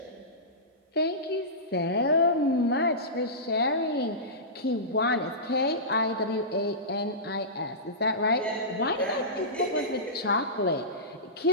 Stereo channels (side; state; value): both; normal; correlation -0.19